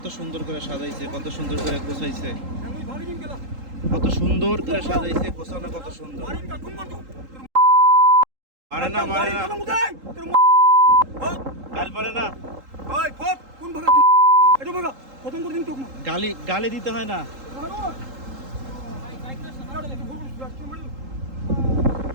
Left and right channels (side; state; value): left; late; 3.8 ms